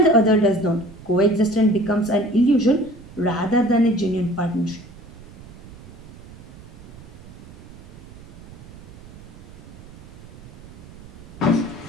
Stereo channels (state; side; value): noise; right; rumble, 17 dB below the sound